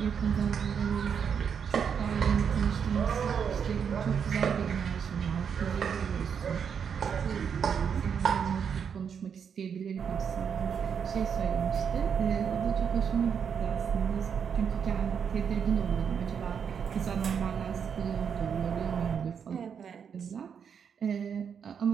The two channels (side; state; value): left; quieter; 7.2 dB